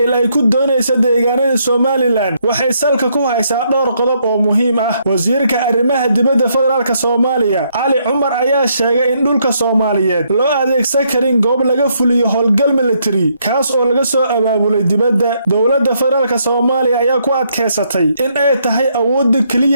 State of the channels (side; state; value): both; inverted; correlation -0.74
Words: ay ku doonayso deegaanada Somaliland waxay salka ku haysaa dhowr qodob oo muhiim ah. Wasiirka arrimaha dibadda federaalka Soomaaliya Ali Cumar ayaa sheegay in dhulka Soomaaliyeed loo adeegsan karin goob laga fuliyo howlgal military kaas oo laga soo abaabulay dibadda. Dowladda federaalka Soomaaliya ayaa ku adkeysatay in ay tahay awoodda